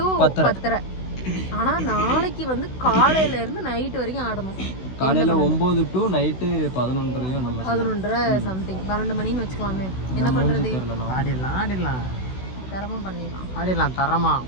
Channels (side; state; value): right; late; 16 ms